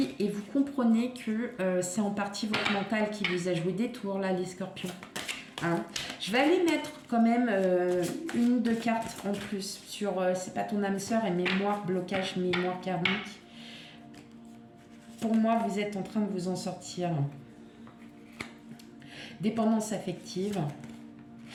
et vous comprenez que c'est en partie votre mental qui vous a joué des tours, là, les scorpions. Je vais aller mettre quand même une ou deux cartes en plus sur c'est pas ton âme sœur et mémoire, blocage, mémoire karmique. Pour moi, vous êtes en train de vous en sortir. Dépendance affective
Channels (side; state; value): both; identical; correlation 1.00